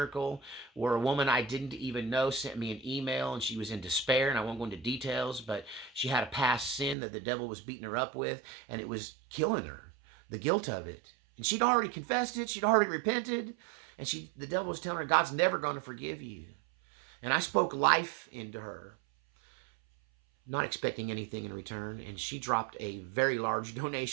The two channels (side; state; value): left; drops out; at 7.0 s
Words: where a woman I didn't even know sent me an email, and she was in despair, and I won't go into details, but she had a past sin that the devil was beating her up with, and it was killing her, the guilt of it. And she'd already confessed it. She'd already repented. And the devil was telling her, God's never going to forgive you. And I spoke life into her, not expecting anything in return. And she dropped a very large